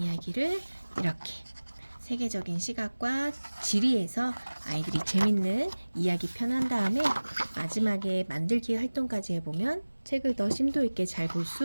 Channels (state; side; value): inverted; both; correlation -1.00